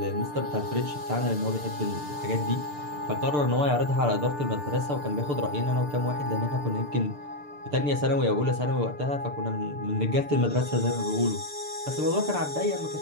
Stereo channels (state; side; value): late; left; 6.8 ms